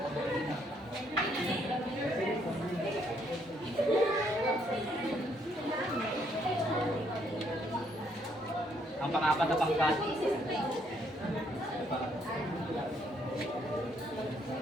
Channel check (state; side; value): normal; both; correlation 0.70